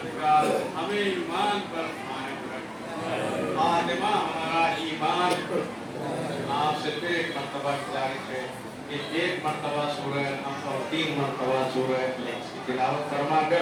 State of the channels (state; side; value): identical; both; correlation 1.00